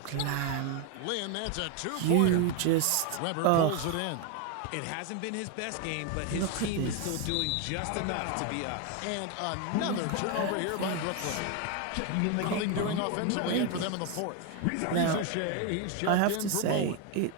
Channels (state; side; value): different; both; correlation 0.01